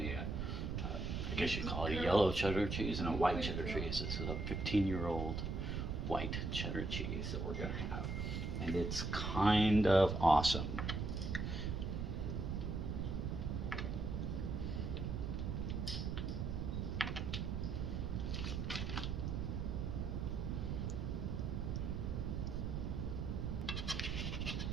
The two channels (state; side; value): noise; right; rumble, 1 dB below the sound